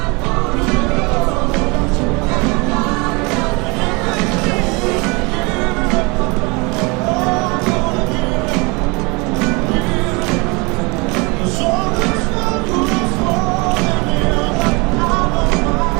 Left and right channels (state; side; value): quieter; left; 27.9 dB